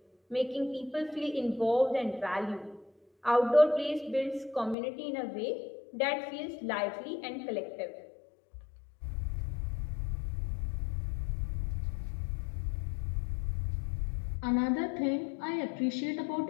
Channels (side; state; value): right; drops out; at 4.8 s